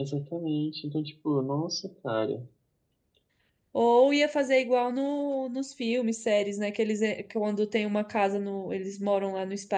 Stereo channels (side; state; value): both; identical; correlation 1.00